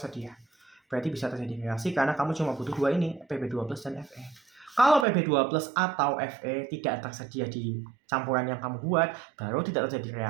Berarti bisa terjadi reaksi karena kamu cuma butuh dua ini, Pb2+ dan Fe. Kalau Pb2 plus atau Fe tidak tersedia di campuran yang kamu buat, baru tidak terjadi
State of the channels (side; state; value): left; drops out; at 5.1 s